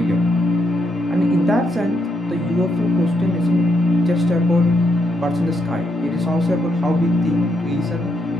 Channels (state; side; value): normal; both; correlation 0.78